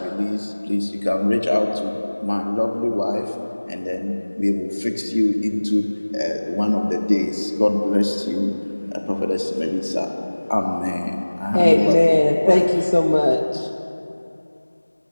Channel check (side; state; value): both; inverted; correlation -1.00